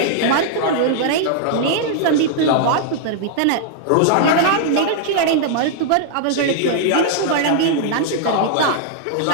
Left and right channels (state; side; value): different; both; correlation -0.01